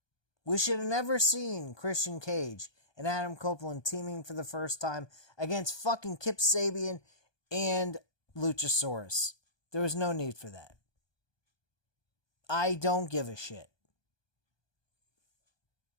We should have never seen Christian Cage and Adam Copeland teaming for the first time against fucking Kip Sabian and Luchasaurus. There was no need for that. I don't give a shit.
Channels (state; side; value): late; right; 1.2 ms